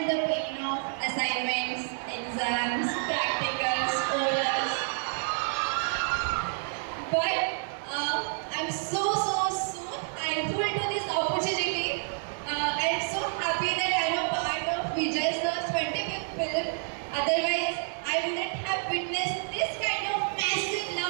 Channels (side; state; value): left; silent; 59 dB below the other